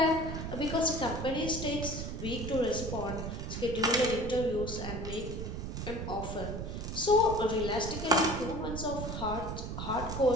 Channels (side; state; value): right; noise; rumble, 5 dB below the sound